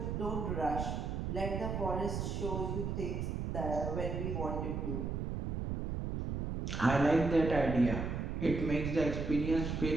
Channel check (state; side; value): noise; right; rumble, 2 dB below the sound